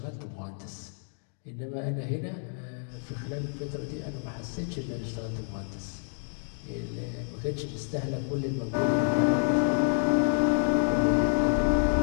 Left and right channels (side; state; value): right; silent; 59 dB below the other